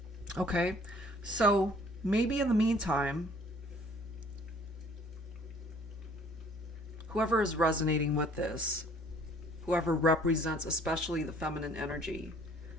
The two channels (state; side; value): normal; both; correlation 0.56